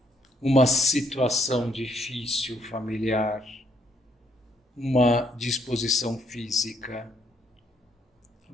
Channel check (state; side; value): normal; both; correlation 0.70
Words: uma situação difícil familiar, uma disposição física.